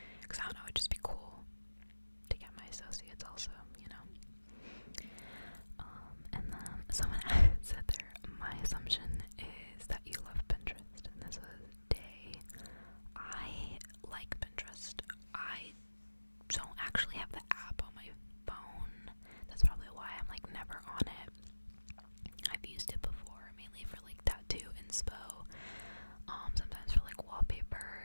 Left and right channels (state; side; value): inverted; both; correlation -1.00